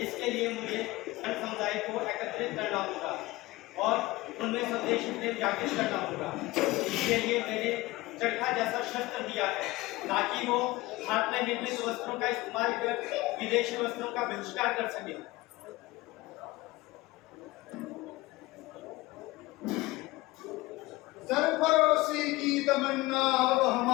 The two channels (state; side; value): quieter; right; 20.0 dB